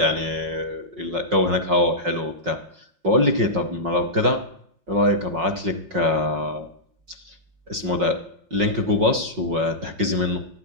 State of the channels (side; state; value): left; late; 5.4 ms